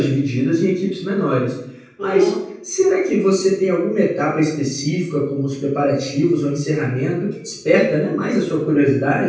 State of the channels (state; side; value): identical; both; correlation 1.00